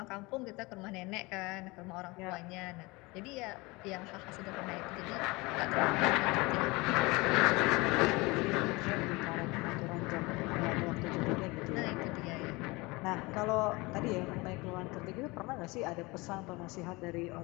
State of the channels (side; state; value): right; quieter; 24.0 dB